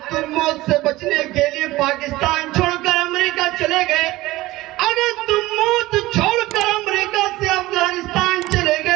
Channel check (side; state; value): left; quieter; 18.3 dB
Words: تم موت سے بچنے کے لیے پاکستان چھوڑ کر امریکہ چلے گئے, اگر تم موت چھوڑ کر امریکہ سے افغانستان چلے